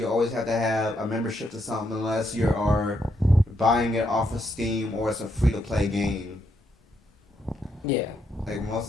always have to have a membership to something unless you are buying it off of Steam or it's a free-to-play game. Yeah. Like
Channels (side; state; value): both; normal; correlation 0.78